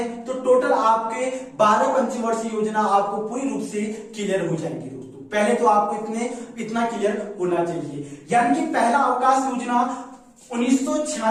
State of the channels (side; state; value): both; identical; correlation 1.00